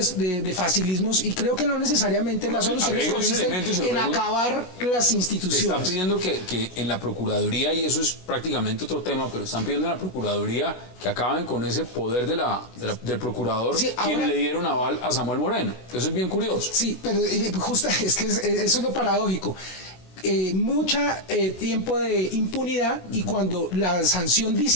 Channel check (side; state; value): right; late; 26 ms